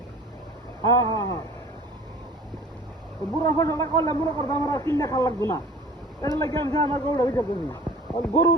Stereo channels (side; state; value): both; normal; correlation 0.45